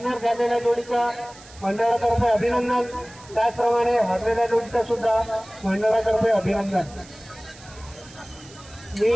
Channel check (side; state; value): right; noise; hiss, 21 dB below the sound